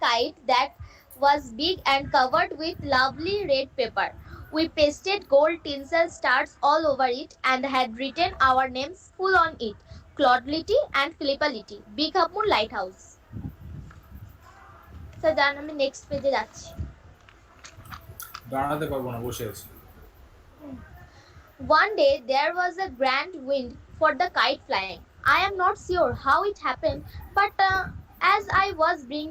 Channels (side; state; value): both; identical; correlation 1.00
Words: kite that was big and covered with lovely red paper. We pasted gold tinsel stars all over it and had written our names full on it. Claude and Philippa Litty, 𝓤𝓭𝓪𝓷 lighthouse. Sir দাঁড়ান আমি next পেজে যাচ্ছি। দাঁড়াতে পারবো না, বসে আছি। One day there was a grand wind for the kite flying. I am not sure how it happened, but as I was